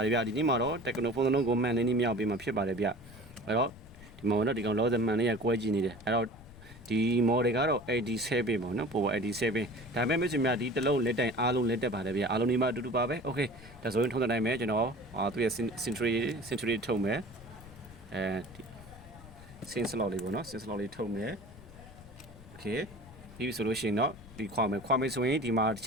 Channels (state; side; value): noise; left; rumble, 19 dB below the sound